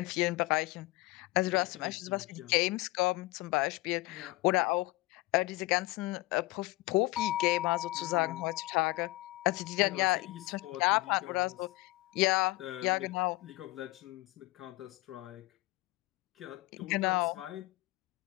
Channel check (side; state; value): right; quieter; 20.4 dB